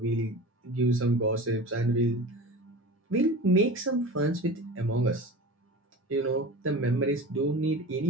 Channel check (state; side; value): normal; both; correlation 0.34